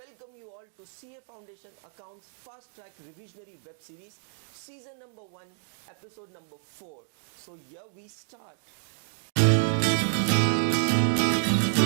you all to CA foundation accounts fast track revisionary web series season number 1 episode number 4। So here we start.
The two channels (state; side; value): silent; left; digital silence